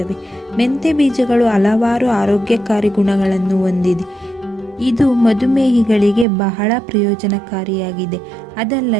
ಮೆಂತೆ ಬೀಜಗಳು ಹಲವಾರು ಆರೋಗ್ಯಕಾರಿ ಗುಣಗಳನ್ನು ಹೊಂದಿದೆ. ಇದು ಮಧುಮೇಹಿಗಳಿಗೆ ಬಹಳ ಪ್ರಯೋಜನಕಾರಿಯಾಗಿದೆ.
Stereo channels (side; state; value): left; drops out; at 6.2 s